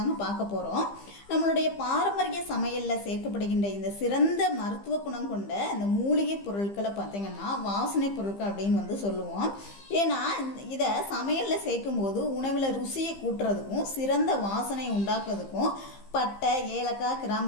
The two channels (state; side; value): late; right; 15 ms